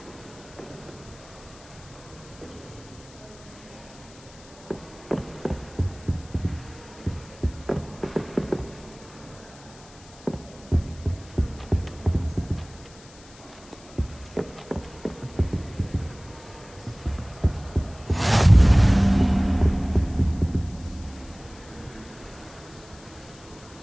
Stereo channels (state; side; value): noise; left; hiss, 22 dB below the sound